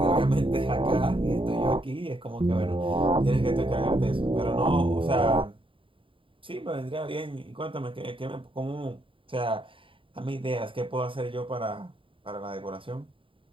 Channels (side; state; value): left; late; 0.25 ms